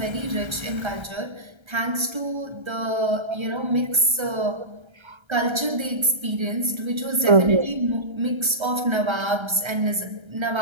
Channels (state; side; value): late; left; 1.3 ms